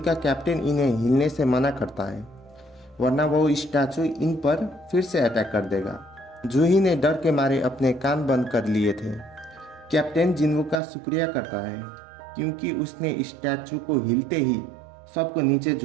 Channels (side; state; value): left; drops out; at 10.8 s